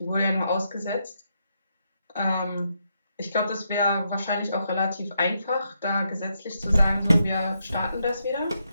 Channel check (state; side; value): inverted; both; correlation -0.80